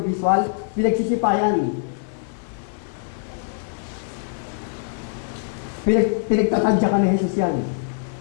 visual, pinagsisipayan. Pinagtatadyakan ni Jesus yan.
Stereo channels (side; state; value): right; silent; 63 dB below the other